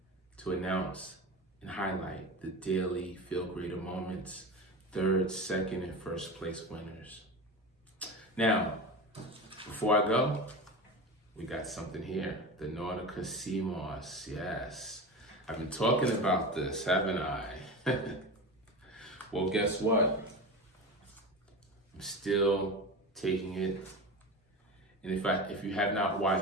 to announce and highlight the daily FeeLgr8r moments, third, second, and first place winners. Now, before I go, we got something here, the Nautica CMOS. Yes, I've been talking about this, haven't I? Well, guess what? I'm still taking it. And if you have not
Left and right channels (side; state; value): both; normal; correlation 0.26